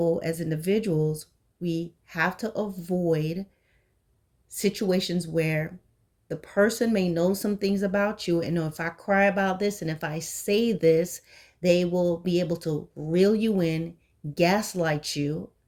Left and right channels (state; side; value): identical; both; correlation 1.00